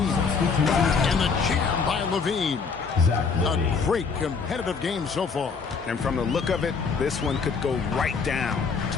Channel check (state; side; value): quieter; right; 5.3 dB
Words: And the jam by Levine. A great competitive game so far. And from the look of it, this one could go right down